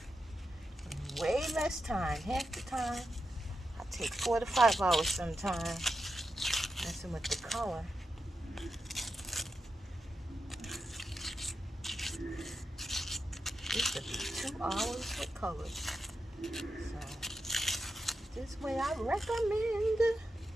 Way less time, half the time. I take 4 to 5 hours sometimes messing with the color. This will be 2 hours with colors. So this way I recommend.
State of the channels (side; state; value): both; normal; correlation 0.88